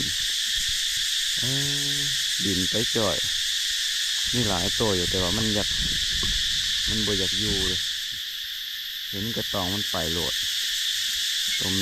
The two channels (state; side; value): identical; both; correlation 1.00